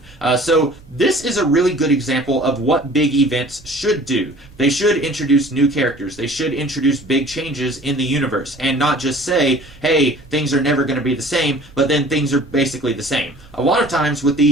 So this is a really good example of what big events should do. They should introduce new characters. They should introduce big changes in the universe, and not just say, hey, things are never going to be the same, but then things are basically the same. A lot of times with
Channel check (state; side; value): noise; right; rumble, 23 dB below the sound